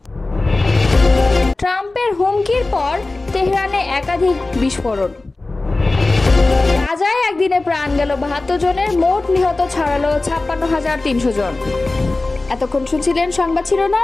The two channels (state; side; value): quieter; right; 3.2 dB